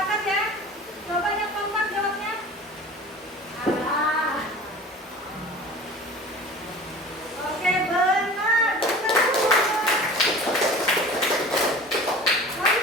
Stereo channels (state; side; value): normal; both; correlation 0.40